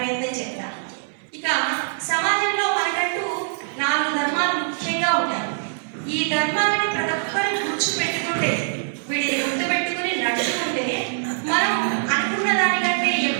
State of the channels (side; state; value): left; silent; 63 dB below the other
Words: చేద్దాం. ఇక సమాజంలో మనకంటూ 4 ధర్మాలు ముఖ్యంగా ఉంటాయి. ఈ ధర్మాలని ప్రతి ఒక్కరూ గుర్తుపెట్టుకుంటే, వీటిని గుర్తుపెట్టుకుని నడుచుకుంటే మనం అనుకున్న దానికంటే